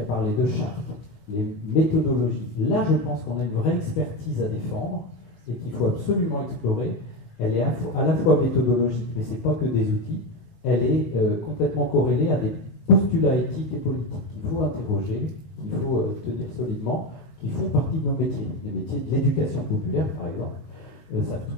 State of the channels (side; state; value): right; late; 19 ms